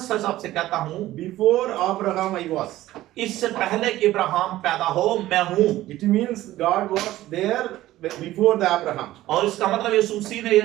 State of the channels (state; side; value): quieter; left; 15.4 dB